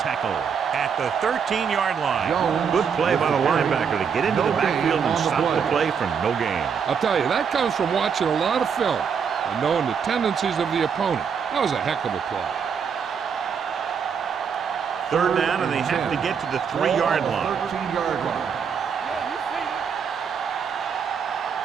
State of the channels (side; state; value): left; quieter; 6.7 dB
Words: at the 13-yard line. Good play by the linebacker to get into the backfield and stop the play for no gain. I'll tell you, that comes from watching a lot of film and knowing the tendencies of the opponent. That was a heck of a play. Third down, and they have to get to the 3-yard line. 13-yard line.